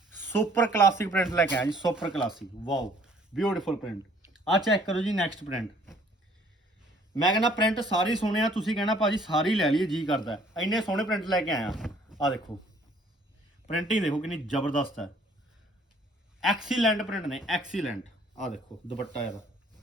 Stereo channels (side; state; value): both; normal; correlation 0.59